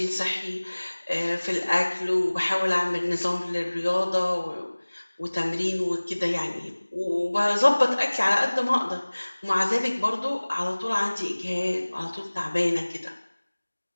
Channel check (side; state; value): both; inverted; correlation -1.00